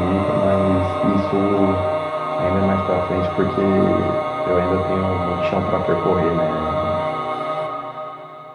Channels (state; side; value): identical; both; correlation 1.00